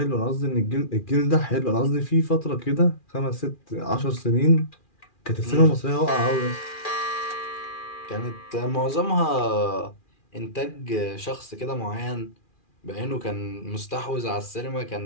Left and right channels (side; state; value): right; late; 2.4 ms